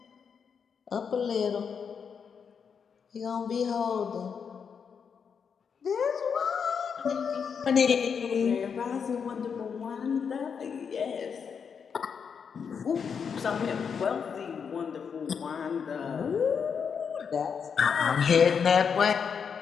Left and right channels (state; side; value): quieter; right; 6.6 dB